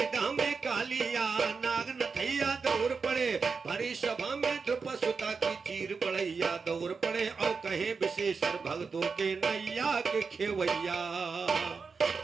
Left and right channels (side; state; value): left; quieter; 5.0 dB